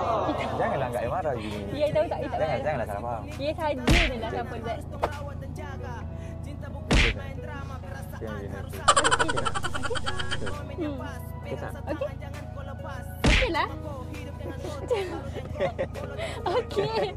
Janganlah anggap I marah gini. Ya tahu tak? Tak marah. Janganlah salah faham. Ya saja je lah siapa Zat. Okey. Okey lah. Okey.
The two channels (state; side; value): identical; both; correlation 1.00